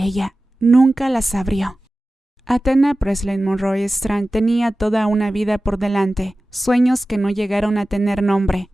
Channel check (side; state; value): both; normal; correlation 0.96